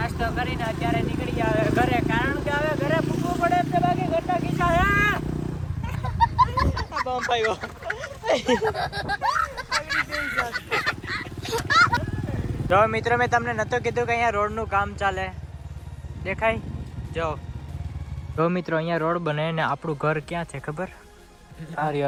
કરીને અત્યારે નીકળી ગયા હવે ઘરે, કારણ કે હવે ઘરે પૂછવું પડે એટલે બાકી ઘરના કિસ્સા જો મિત્રો મેં તમને નતો કીધું કે અહીંયા રોડનું કામ ચાલે. દેખાય જો મિત્રો અહીંયા રોડ બને ને આપણું ઘર ક્યાં છે ખબર?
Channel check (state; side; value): identical; both; correlation 1.00